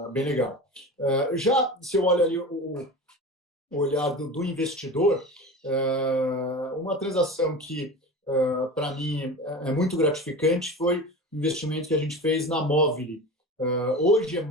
bem legal. Já se eu olho ali o olhar do investidor, uma transação que para mim é muito gratificante foi o investimento que a gente fez na Movile. Hoje é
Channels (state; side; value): normal; both; correlation 0.31